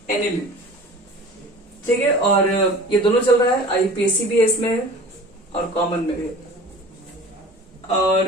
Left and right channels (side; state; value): both; normal; correlation 0.42